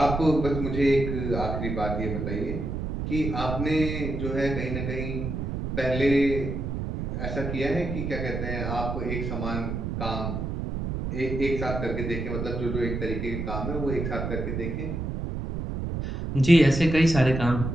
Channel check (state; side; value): noise; right; rumble, 4 dB below the sound